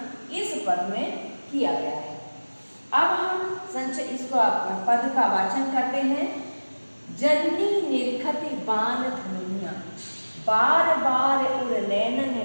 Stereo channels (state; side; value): inverted; both; correlation -1.00